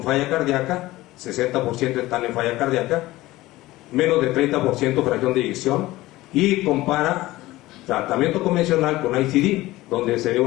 falla cardíaca, 60% están en falla cardíaca, menos de 30% fracción de eyección, y compara tratamiento convencional con ICD, donde se ve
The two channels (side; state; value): right; quieter; 17.9 dB